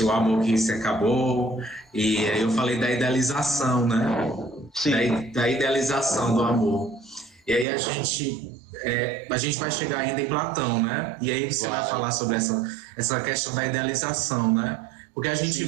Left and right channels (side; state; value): left; drops out; at 7.7 s